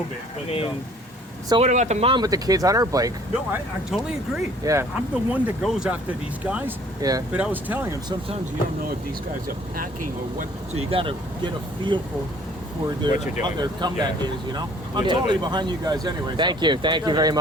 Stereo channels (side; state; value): both; normal; correlation 0.55